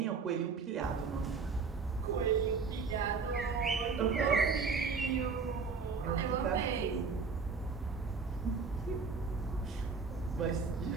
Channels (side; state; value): left; quieter; 4.9 dB